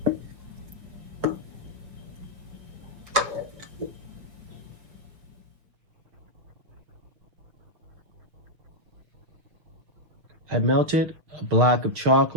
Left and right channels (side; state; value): left; late; 6.2 ms